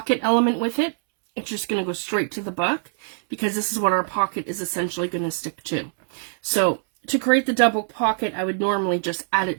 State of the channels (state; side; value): silent; left; digital silence